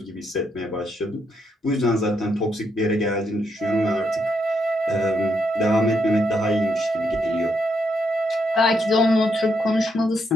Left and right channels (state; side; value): normal; both; correlation 0.77